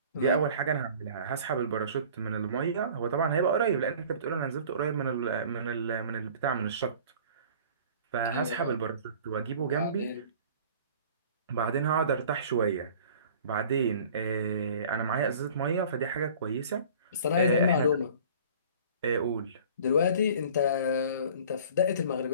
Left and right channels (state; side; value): inverted; both; correlation -0.46